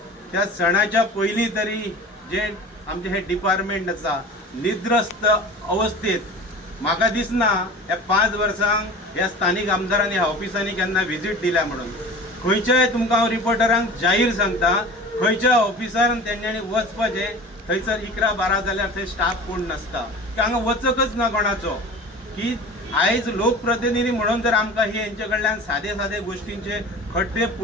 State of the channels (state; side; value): normal; both; correlation 0.37